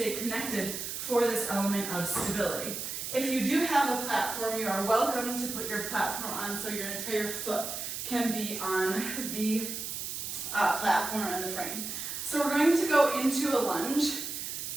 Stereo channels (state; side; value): noise; right; hiss, 5 dB below the sound